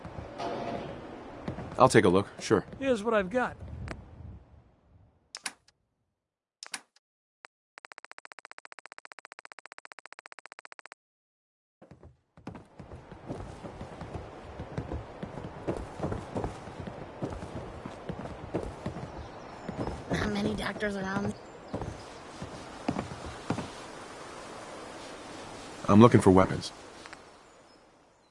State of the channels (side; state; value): both; identical; correlation 1.00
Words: I'll take a look, sure. Here's what I've got. Not many doctors around. I'm looking for weapons.